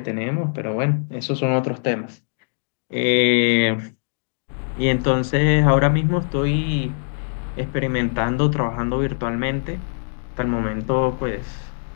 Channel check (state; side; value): silent; right; digital silence